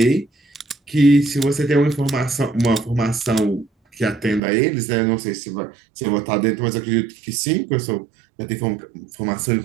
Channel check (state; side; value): drops out; left; at 4.4 s